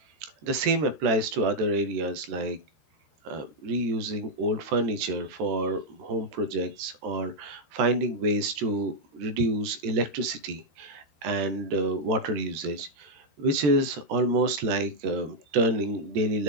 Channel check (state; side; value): late; left; 13 ms